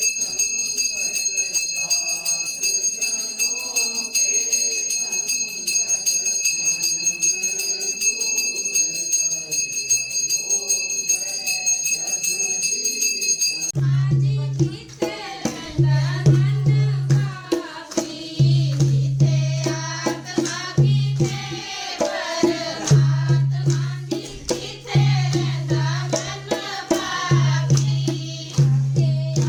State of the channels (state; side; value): identical; both; correlation 1.00